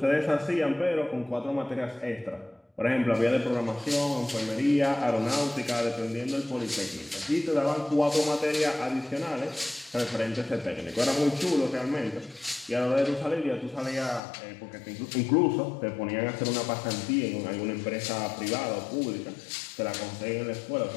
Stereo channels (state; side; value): drops out; right; at 14.2 s